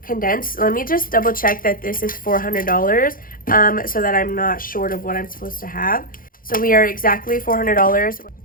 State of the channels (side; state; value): right; late; 0.41 ms